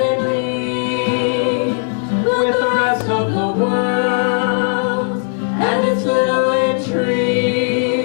in league with the rest of the world and its little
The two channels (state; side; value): silent; right; 56 dB below the other